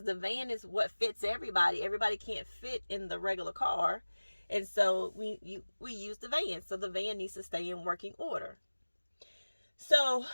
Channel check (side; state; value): both; inverted; correlation -1.00